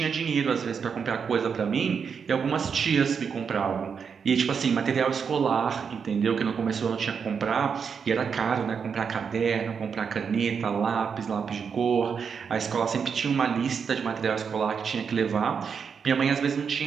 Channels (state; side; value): quieter; left; 6.4 dB